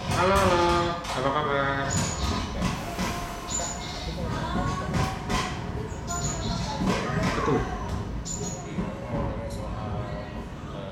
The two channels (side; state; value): both; identical; correlation 1.00